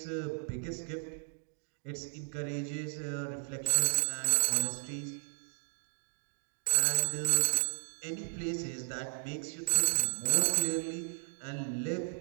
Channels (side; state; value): left; silent; 55 dB below the other